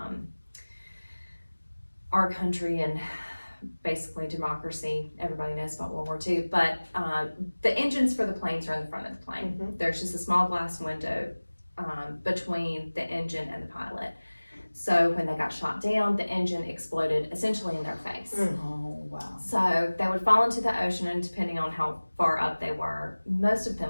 our country and basically democracy. Everybody knows about World War II, but the engines for the planes are in the front of the plane. There's just a small glass window between the engine and the pilot. So when they got shot down, the engine exploded essentially in their face. Oh, wow. So they would fall into the ocean, and depending on how far up they were, most of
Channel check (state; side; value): inverted; both; correlation -1.00